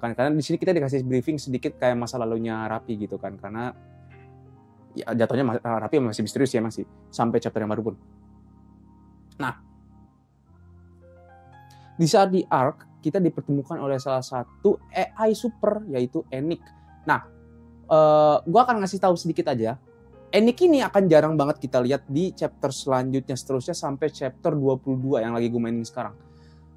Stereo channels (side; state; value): both; identical; correlation 1.00